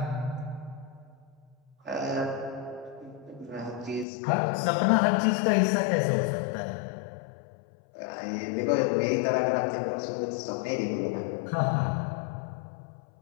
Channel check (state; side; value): drops out; right; at 4.0 s